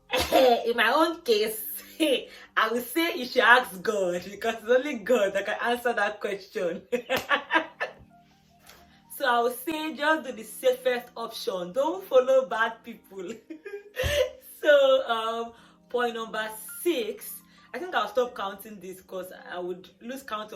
my own case, I would say you should ask God, because it's only God that can answer that question. So I would say just do the safest option. Don't follow bad people. So point number 6, I think I'll stop counting this because I would lose count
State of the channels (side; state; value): both; identical; correlation 1.00